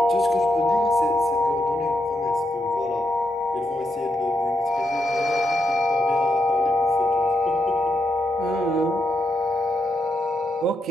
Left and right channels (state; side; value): normal; both; correlation 0.82